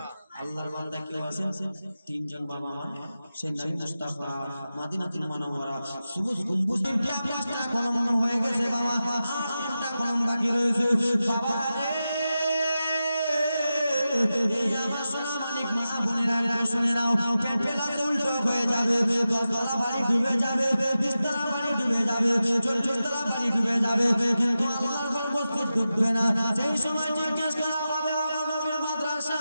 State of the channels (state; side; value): inverted; both; correlation -0.92